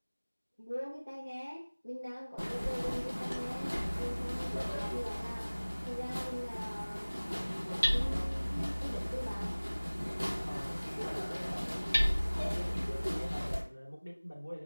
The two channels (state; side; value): inverted; both; correlation -1.00